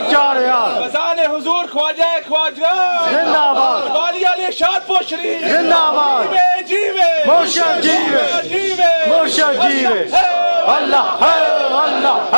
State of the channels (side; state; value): both; inverted; correlation -1.00